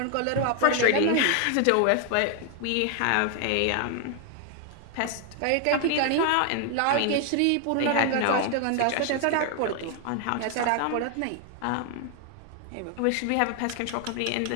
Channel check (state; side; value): different; both; correlation 0.00